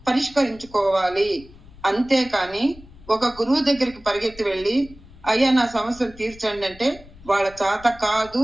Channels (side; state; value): left; noise; rumble, 21 dB below the sound